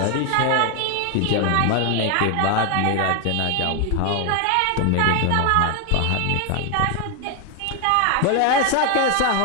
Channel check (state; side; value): different; both; correlation 0.01